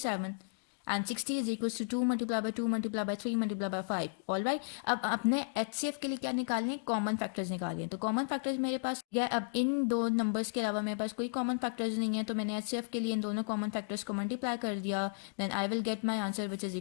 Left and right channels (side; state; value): right; silent; digital silence